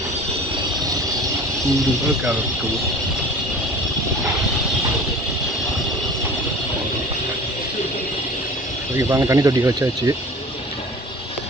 ஓகே. பாருங்க, தண்ணி தொட்டி வச்சாச்சு.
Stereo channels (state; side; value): normal; both; correlation 0.41